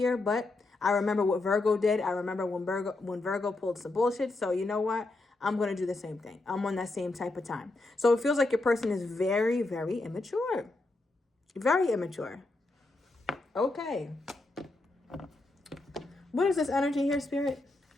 but I remember what Virgo did. I remember when Virgo pulled some bullshit. So you know what? I'm going to do the same thing. I'm on that same type of time. So it feels like your person is very, very immature. Very immature. Okay. What is this energy here, Spirit?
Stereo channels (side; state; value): right; quieter; 3.0 dB